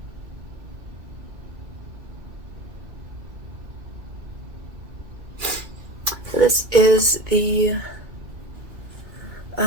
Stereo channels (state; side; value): late; left; 2.2 ms